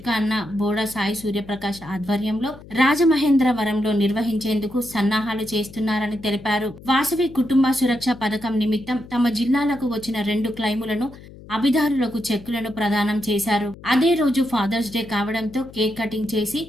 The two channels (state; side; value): noise; left; hum, 19 dB below the sound